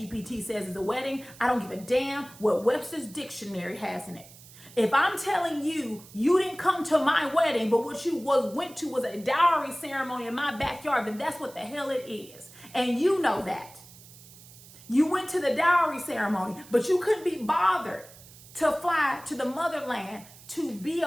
says is a wedding. I don't give a damn what Webster's dictionary has in it. If I'm telling you, you didn't come to my wedding, but what you went to was a dowry ceremony in my backyard, then that's what the hell it is. And you know that. You went to the dowry ceremony, but you couldn't be bothered to fly to the motherland to be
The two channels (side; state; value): right; noise; hiss, 21 dB below the sound